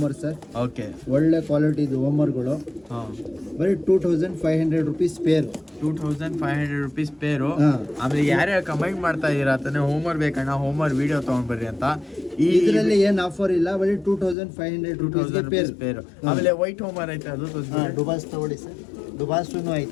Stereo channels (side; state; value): right; drops out; at 14.4 s